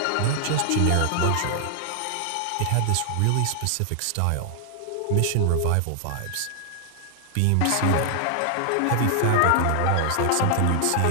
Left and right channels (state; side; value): different; both; correlation 0.00